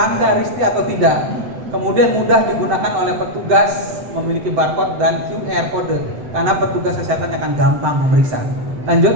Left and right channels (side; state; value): left; late; 7.9 ms